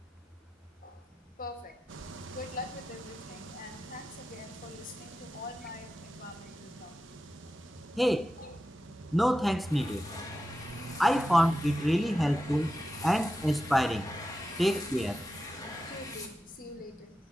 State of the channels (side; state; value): both; normal; correlation 0.91